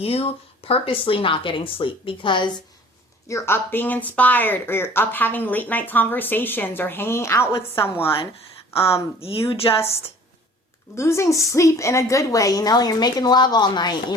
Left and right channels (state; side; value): normal; both; correlation 0.49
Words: purposely not getting sleep because you're up being inspired or you're up having late night conversations or hanging out with someone. You just losing sleep in a good way, you know, you're making love all night. You're